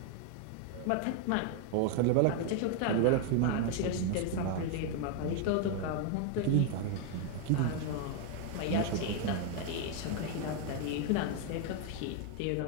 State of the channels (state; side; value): different; both; correlation 0.00